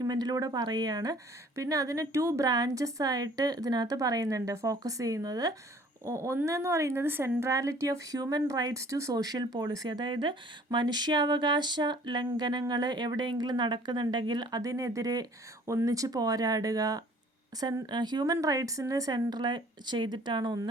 പറയുകയാണ്. പിന്നെ അതിന് 2 ബ്രാഞ്ചസ് ആയിട്ട് ഇതിനകത്ത് പറയുന്നുണ്ട്, ഫോക്കസ് ചെയ്യുന്നത്. ഒന്നെന്ന് പറയുന്നത് centrality of human rights to social policy, അതായത് മനുഷ്യാവകാശ ലംഘനങ്ങൾ എവിടെയെങ്കിലും നടക്കുന്നുണ്ടെങ്കിൽ അതിനെതിരെ ഒന്നിച്ച് പോരാടുക, ഹ്യൂമൻ റൈറ്റ്സിന് സെൻട്രൽ ചെയ്തിട്ടാണ്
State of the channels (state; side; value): normal; both; correlation 0.54